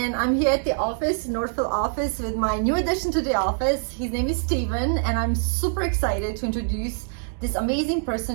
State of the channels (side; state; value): left; silent; digital silence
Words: I'm here at the office, Northfield office, with my new addition to the office. His name is Steven, and I'm super excited to introduce this amazing